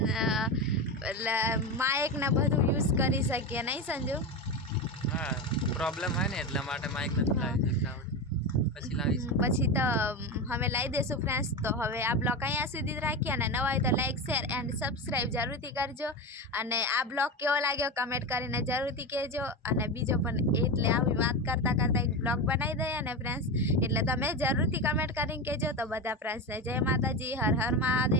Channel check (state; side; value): normal; both; correlation 0.20